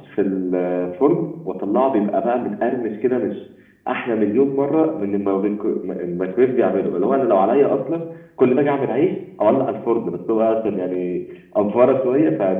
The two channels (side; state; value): both; identical; correlation 1.00